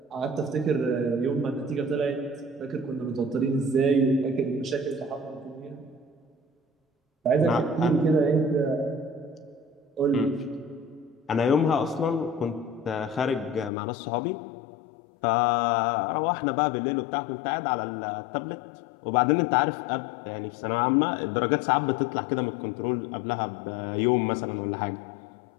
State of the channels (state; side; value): drops out; right; at 13.7 s